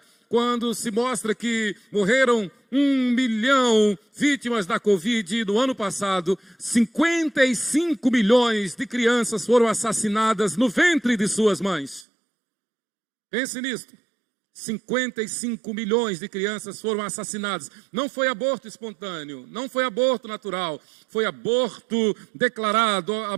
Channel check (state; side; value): drops out; left; at 12.1 s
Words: quando se mostra que morreram 1 milhão vítimas da Covid no ano passado, 55 milhões de crianças foram assassinadas no ventre de suas mães. Pense nisso. 55 milhões de crianças foram assassinadas. Não foi aborto espontâneo, não foi aborto natural, foi aborto declarado,